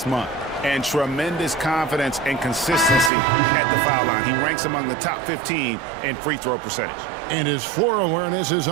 month, and tremendous confidence and consistency at the foul line. He ranks among the top 15 in free throw percentage. And his floor awareness is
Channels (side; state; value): left; drops out; at 3.1 s